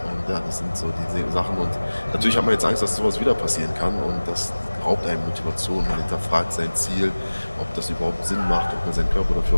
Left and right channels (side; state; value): both; inverted; correlation -1.00